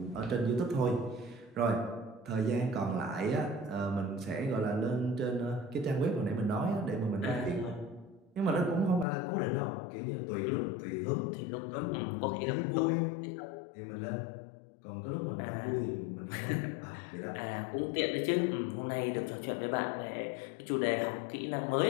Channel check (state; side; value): drops out; right; at 9.1 s